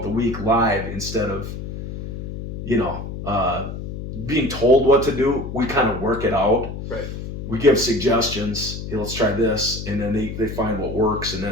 the week live instead of, being told what to do. We kind of work it out. Right. We give suggestions. Hey, let's try this, and then they find what works, and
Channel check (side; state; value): left; noise; hum, 8 dB below the sound